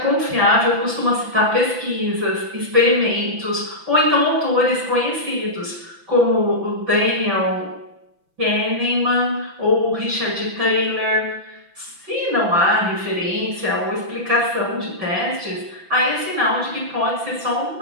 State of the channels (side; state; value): left; late; 5.9 ms